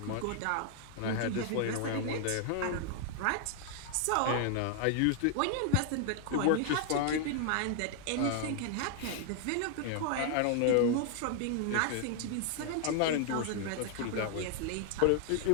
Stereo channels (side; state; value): both; different; correlation 0.00